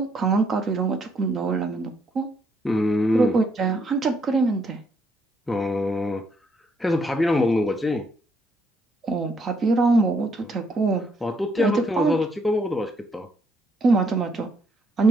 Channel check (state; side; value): normal; both; correlation 0.72